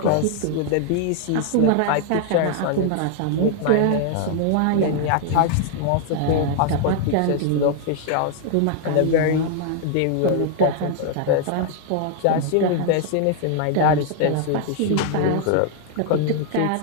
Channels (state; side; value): different; both; correlation 0.00